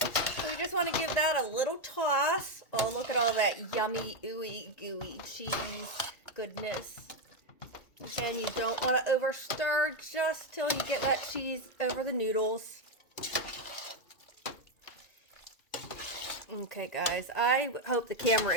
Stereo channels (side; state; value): right; late; 2.3 ms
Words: we just want to give that a little toss. Oh, look at all that yummy, ooey, gooey cheese goodness. Again, you don't want to over stir just till you get that cheese over the noodles. Okay, guys, I hope the camera